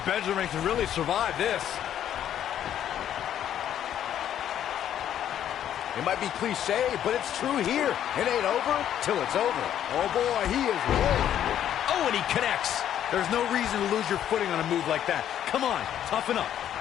Benjamin can really survive this. It might be cliche, but it's true here. It ain't over till it's over. Oh boy, he is rolling. Oh, and he connects. There's no reason to lose your footing on a move like that. Come on, toughen up.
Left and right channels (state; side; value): quieter; right; 10.5 dB